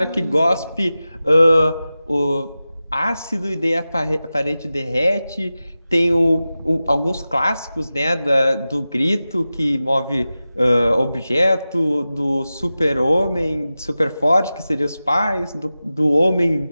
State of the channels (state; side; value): inverted; both; correlation -0.94